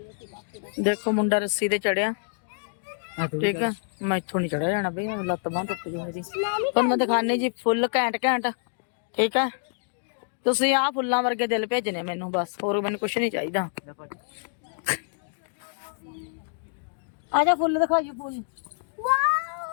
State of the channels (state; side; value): silent; right; digital silence